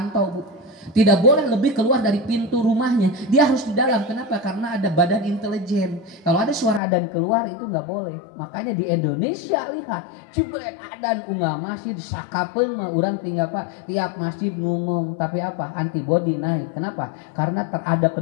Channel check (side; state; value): right; drops out; at 6.8 s